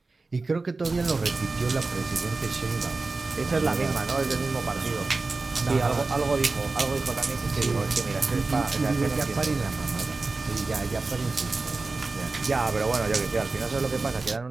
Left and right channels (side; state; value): left; quieter; 3.7 dB